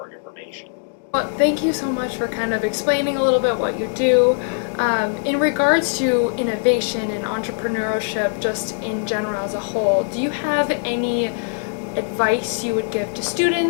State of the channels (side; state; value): right; silent; 65 dB below the other